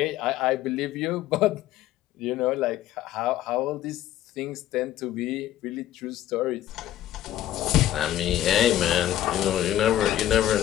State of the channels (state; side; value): quieter; right; 12.7 dB